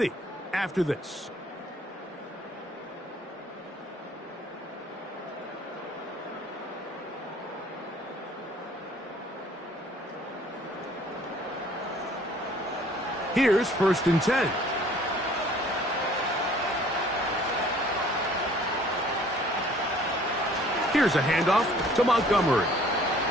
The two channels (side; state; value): both; normal; correlation 0.55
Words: after this. Here's 1st and 10. Here's a handoff to Montgomery.